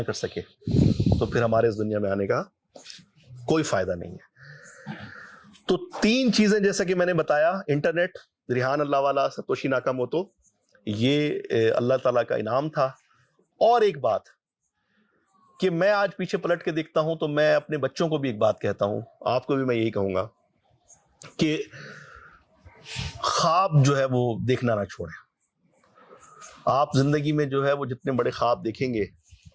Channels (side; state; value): both; identical; correlation 1.00